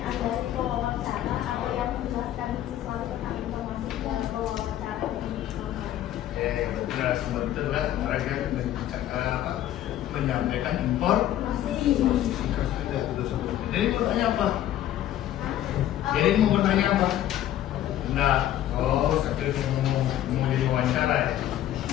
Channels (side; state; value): right; quieter; 12.4 dB